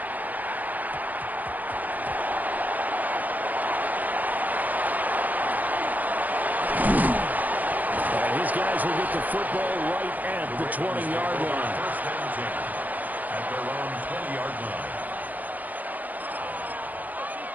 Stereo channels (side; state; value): left; late; 0.081 ms